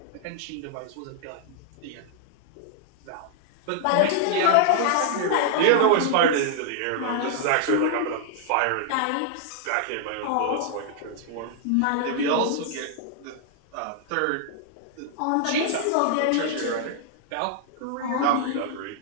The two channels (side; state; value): both; different; correlation -0.01